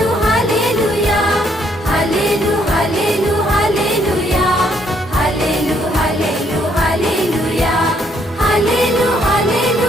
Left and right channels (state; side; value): normal; both; correlation 0.70